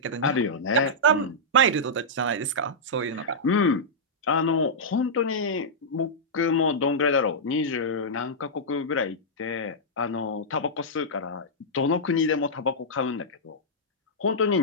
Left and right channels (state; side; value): normal; both; correlation -0.09